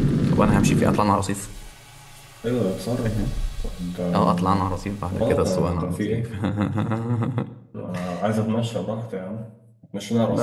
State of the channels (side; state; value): both; identical; correlation 1.00